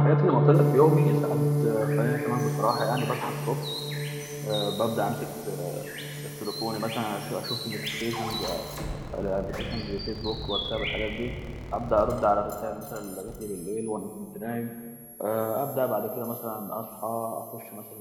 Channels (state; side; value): identical; both; correlation 1.00